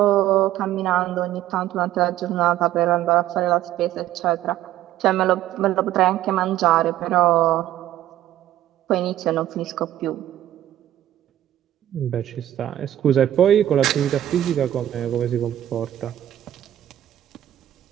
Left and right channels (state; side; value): quieter; left; 12.6 dB